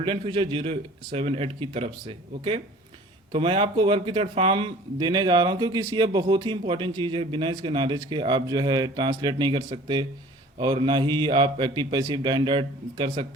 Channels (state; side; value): normal; both; correlation 0.47